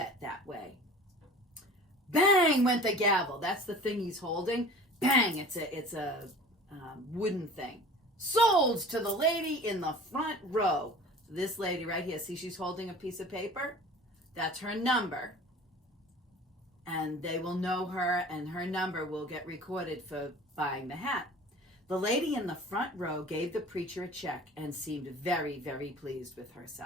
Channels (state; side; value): normal; both; correlation 0.42